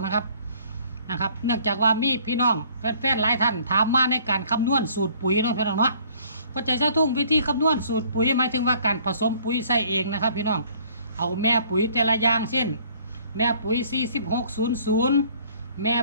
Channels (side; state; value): both; inverted; correlation -0.57